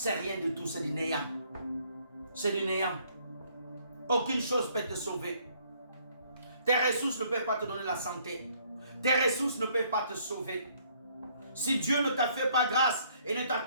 rien de tout, c'est du néant. C'est du néant. Aucune chose peut te sauver. Tes ressources ne peuvent pas te donner la santé. Tes ressources ne peuvent pas te sauver. Si Dieu ne t'a fait pas grâce et ne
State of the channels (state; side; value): inverted; both; correlation -0.64